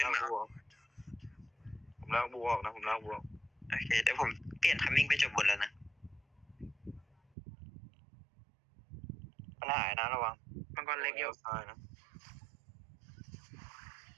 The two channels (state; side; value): drops out; left; at 7.2 s